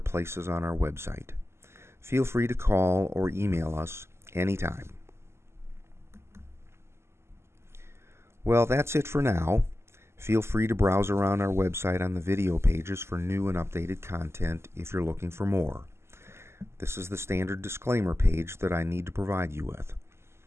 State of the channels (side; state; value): left; late; 0.12 ms